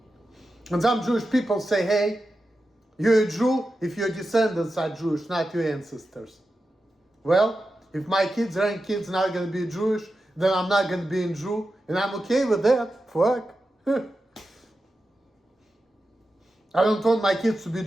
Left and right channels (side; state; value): both; normal; correlation 0.91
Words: And some Jewish people say, hey, you're a Jew if your descendants are Jewish, not your ancestors. Well, if my kids, grandkids not going to be Jewish, then I'm not going to be a Jew, and I'm okay with that. Fuck. I don't want my kids to be